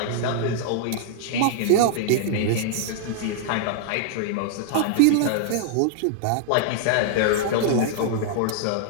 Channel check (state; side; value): different; both; correlation -0.01